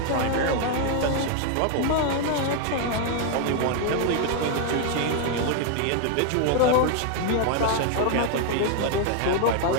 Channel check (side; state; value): both; different; correlation 0.00